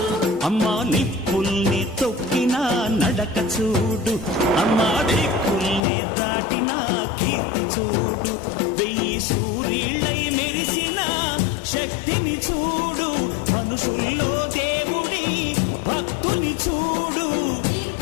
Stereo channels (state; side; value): drops out; right; at 5.8 s